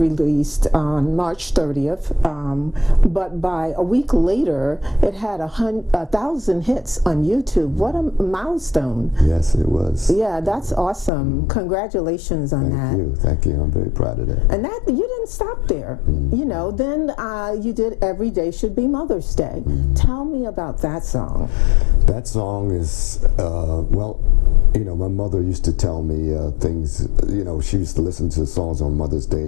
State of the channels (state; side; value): drops out; right; at 11.1 s